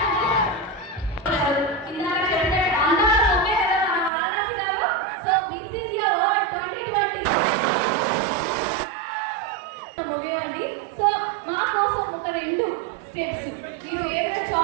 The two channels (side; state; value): left; drops out; at 4.1 s